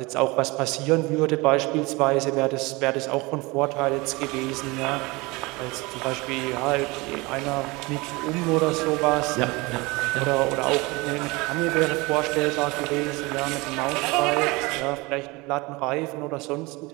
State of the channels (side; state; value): left; quieter; 24.2 dB